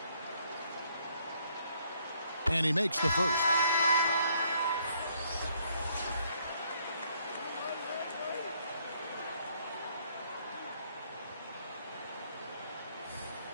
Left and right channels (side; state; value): both; inverted; correlation -0.67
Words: And he makes the first.